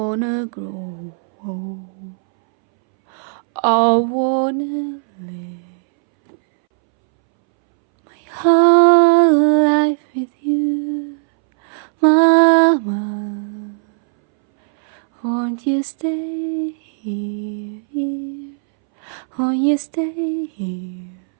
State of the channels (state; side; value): silent; left; 65 dB below the other